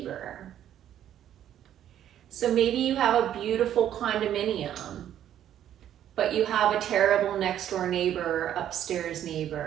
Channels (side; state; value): left; quieter; 10.9 dB